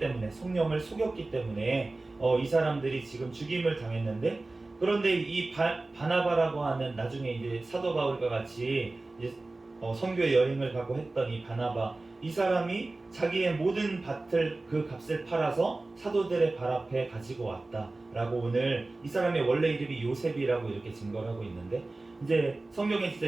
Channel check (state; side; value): quieter; left; 3.1 dB